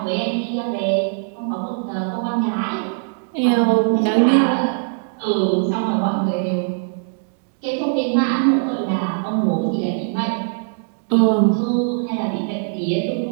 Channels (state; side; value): silent; left; digital silence